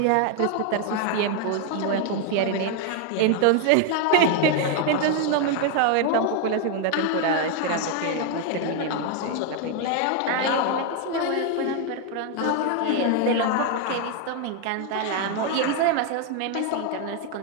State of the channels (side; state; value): both; different; correlation 0.01